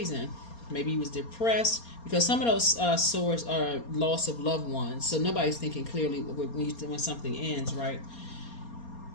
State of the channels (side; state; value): right; late; 4.3 ms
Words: Maybe he was depressed, because some of those swords are loss of loved ones. So nobody's thinking clearly when something ends, right?